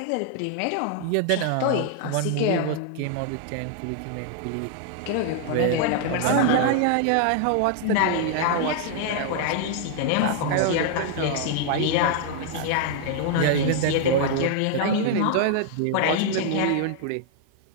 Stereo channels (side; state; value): both; different; correlation 0.00